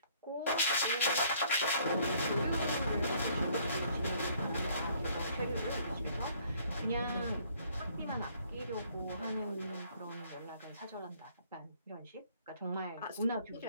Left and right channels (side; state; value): both; inverted; correlation -0.61